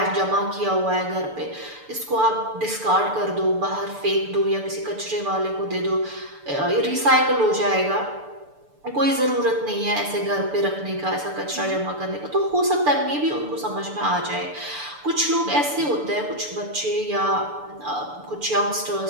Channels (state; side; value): late; left; 6.8 ms